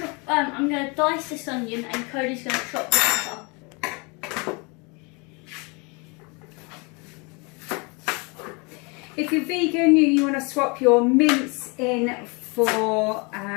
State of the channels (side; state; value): right; quieter; 30.2 dB